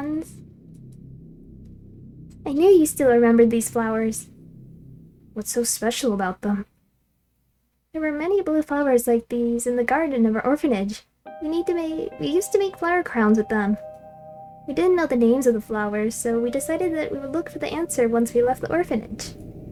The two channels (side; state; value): both; identical; correlation 1.00